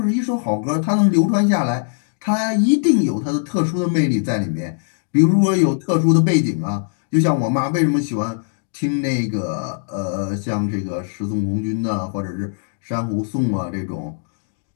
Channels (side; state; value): right; silent; digital silence